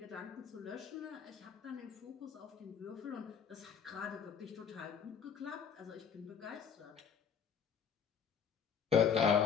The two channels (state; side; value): quieter; right; 7.1 dB